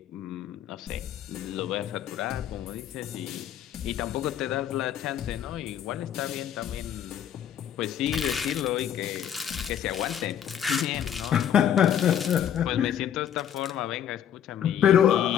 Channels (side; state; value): right; quieter; 9.8 dB